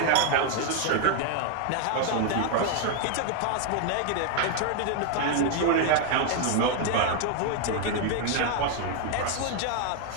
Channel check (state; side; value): different; both; correlation 0.00